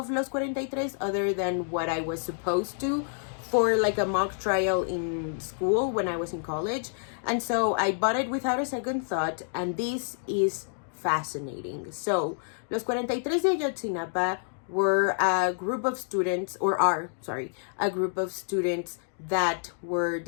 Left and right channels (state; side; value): silent; right; digital silence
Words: Los 43 other than what I was supposed to for a mock trial in school when I was in college. And so I bought it without a second thought, and this is fascinating. So, Los 43 de Ayotzinapa were a group of students, a group of students that were